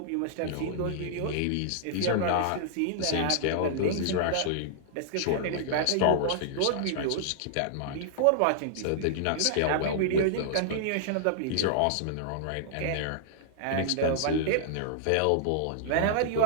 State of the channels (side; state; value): both; different; correlation -0.01